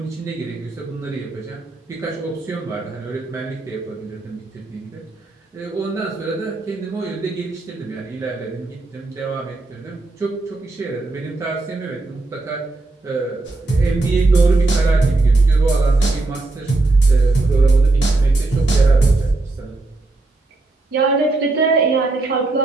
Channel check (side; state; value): left; quieter; 3.2 dB